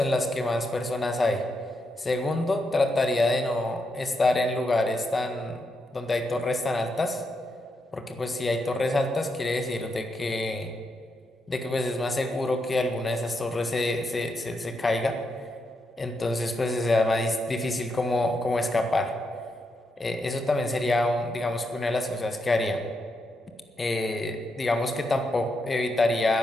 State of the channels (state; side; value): normal; both; correlation 0.82